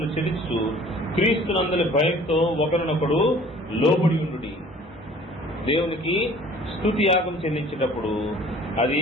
చెల్లించు క్రీస్తునందలి భయంతో ఒకరినొకడు లోబడి ఉండుడి. దేవునికి స్తుతి యాగం చెల్లించేటప్పుడు అది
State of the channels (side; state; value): both; normal; correlation 0.50